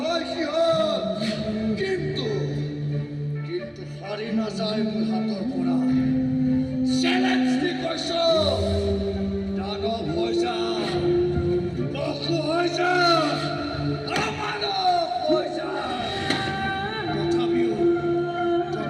হয় সিহঁত, কিন্তু হাৰি নাযায় মোৰ হাতৰ পৰা। চেলেঞ্জ দি কৈছো, দানৱ হৈ যা, পশু হৈ যা, অমানৱ হৈ যা। তথাপিও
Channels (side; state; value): both; identical; correlation 1.00